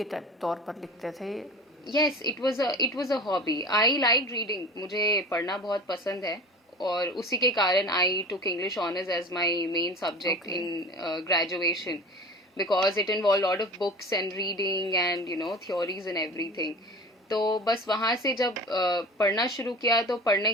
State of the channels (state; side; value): normal; both; correlation 0.36